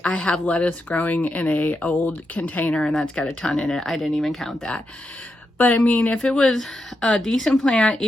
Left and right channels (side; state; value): both; normal; correlation 0.85